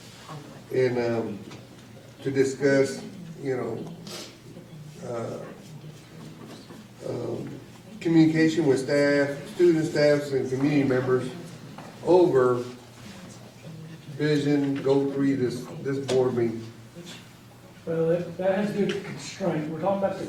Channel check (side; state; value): both; identical; correlation 1.00